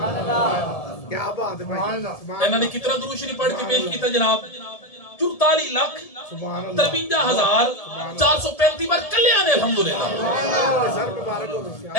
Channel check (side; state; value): right; late; 1.7 ms